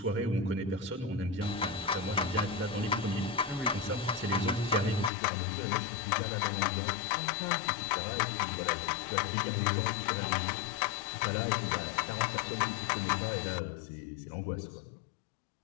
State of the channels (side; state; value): right; drops out; at 5.1 s